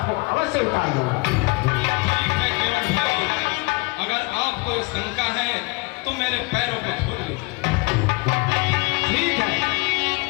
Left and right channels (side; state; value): right; quieter; 26.7 dB